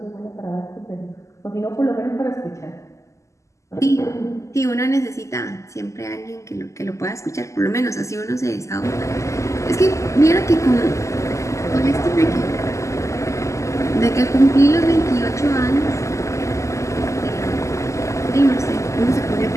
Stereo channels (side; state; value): right; late; 0.15 ms